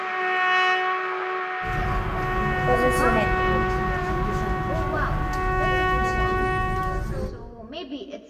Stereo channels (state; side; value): identical; both; correlation 1.00